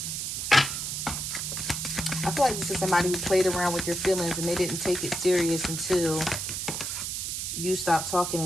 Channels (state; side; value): noise; right; hiss, 3 dB below the sound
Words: I feel like this is somebody who played around with your feelings and they didn't take it serious until you stopped talking.